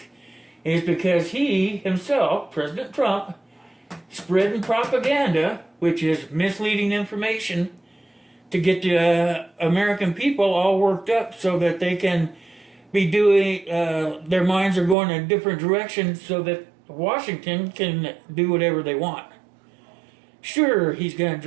Is because he himself, President Trump, spreading propaganda, which is misleading information, to get the American people all worked up so that they can be doing, their minds are going in a different direction so that Washington can do whatever they want. Sure, he's going to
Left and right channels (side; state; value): left; drops out; at 15.0 s